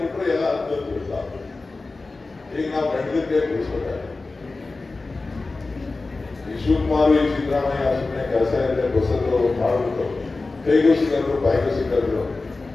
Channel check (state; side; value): quieter; right; 3.5 dB